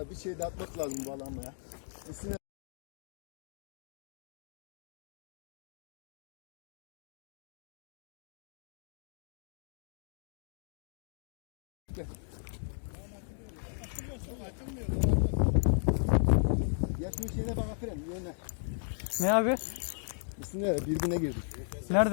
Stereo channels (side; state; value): right; silent; digital silence